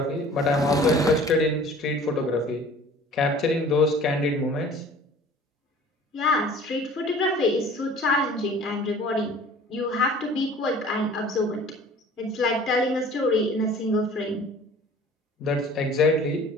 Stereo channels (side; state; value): both; normal; correlation 0.47